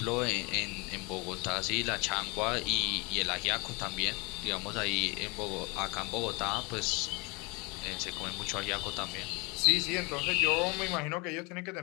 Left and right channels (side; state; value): right; quieter; 28.3 dB